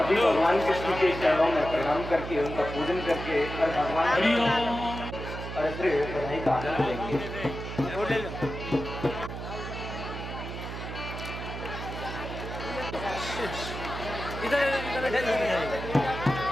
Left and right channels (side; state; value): right; noise; hum, 7 dB below the sound